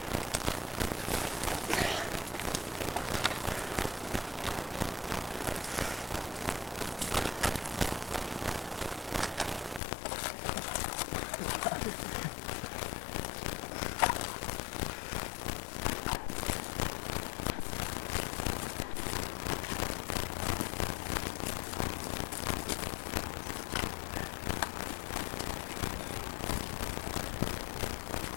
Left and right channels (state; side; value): drops out; right; at 9.8 s